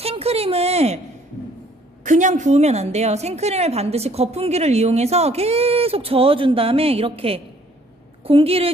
그냥 부으면 안 돼요. 생크림을 반드시 거품기를 이용해서 계속 저어준 다음에 이렇게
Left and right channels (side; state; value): both; normal; correlation 0.61